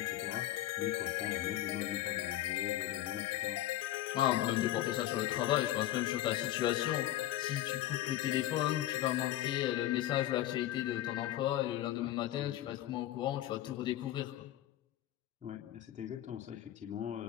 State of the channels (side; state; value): right; quieter; 13.9 dB